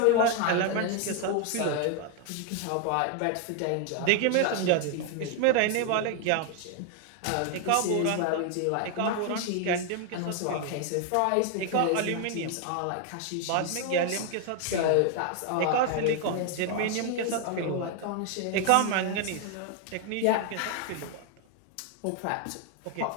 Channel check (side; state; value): both; different; correlation 0.00